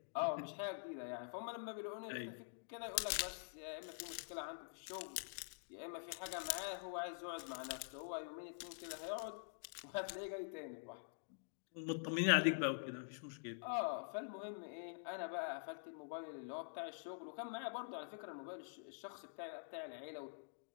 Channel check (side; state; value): right; silent; digital silence